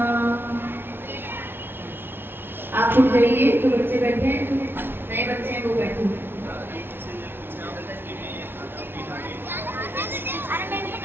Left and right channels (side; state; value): left; late; 0.11 ms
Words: आप उठ जाइए, जो बच्चे बैठे हैं, जो नए बच्चे हैं वो बैठे हैं।